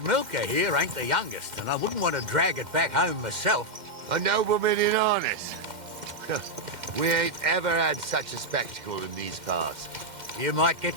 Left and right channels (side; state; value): left; late; 2.1 ms